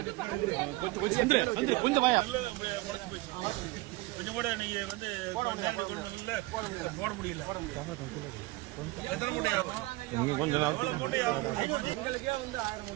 கொஞ்சம் வாயா கொஞ்சம் கூட நீங்க வந்து போட முடியல. எத்தனை மூட்டை ஆகும்? கொஞ்சம் எங்களுக்கே வந்து 1000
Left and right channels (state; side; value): quieter; left; 20.6 dB